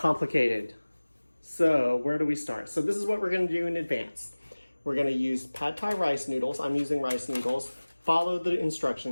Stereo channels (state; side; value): inverted; both; correlation -1.00